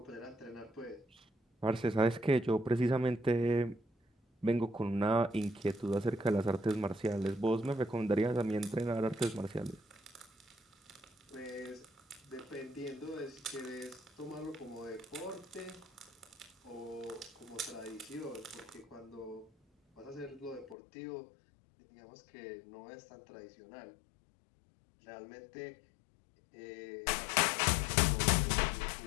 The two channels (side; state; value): right; drops out; at 20.8 s